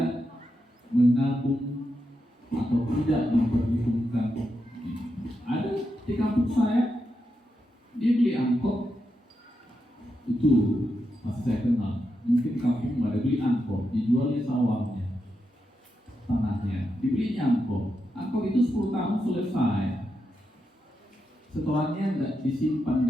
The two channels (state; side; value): normal; both; correlation 0.85